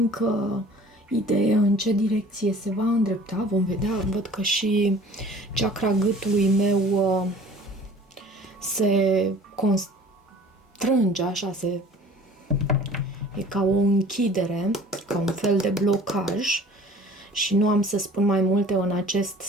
idee în ce direcție se va îndrepta. Vom vedea. Văd că și chakra gâtului meu se constrânge, așa, e ca o închidere, ca un fel de blocaj și nu am să spun mai multe în acest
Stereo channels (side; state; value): both; normal; correlation 0.48